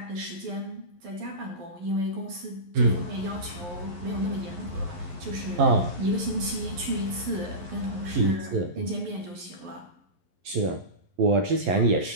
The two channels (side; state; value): left; late; 11 ms